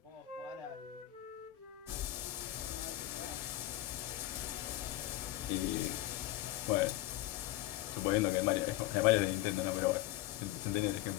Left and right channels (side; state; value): right; quieter; 15.8 dB